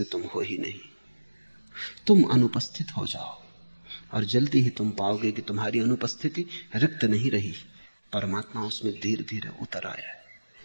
तुम हो ही नहीं। तुम अनुपस्थित हो जाओ और जल्दी ही तुम पाओगे कि तुम्हारी अनुपस्थिति रिक्त नहीं रही, परमात्मा उसमें धीरे धीरे उतर आया है।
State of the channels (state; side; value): inverted; both; correlation -1.00